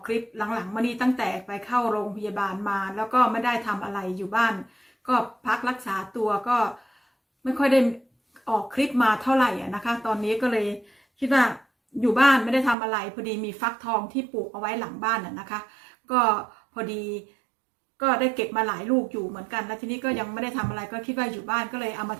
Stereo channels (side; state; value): left; drops out; at 12.8 s